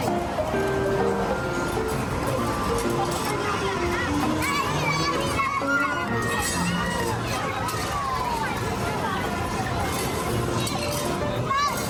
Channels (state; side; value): identical; both; correlation 1.00